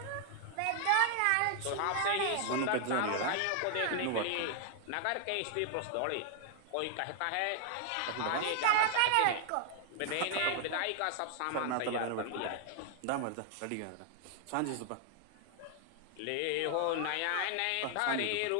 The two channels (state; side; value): different; both; correlation 0.00